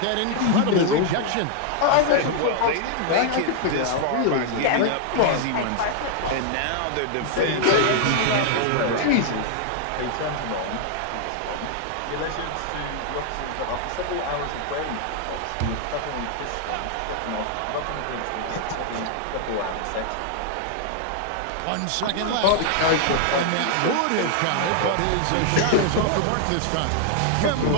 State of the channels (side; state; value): both; different; correlation 0.00